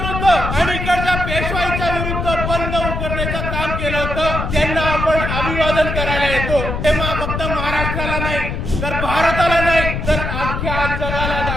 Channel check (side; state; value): left; noise; rumble, 3 dB below the sound